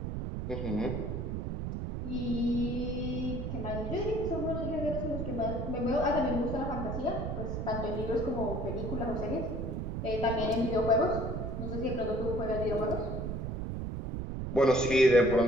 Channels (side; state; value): right; noise; rumble, 4 dB below the sound